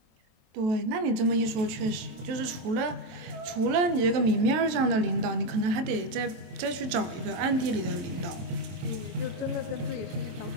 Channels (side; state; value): left; late; 23 ms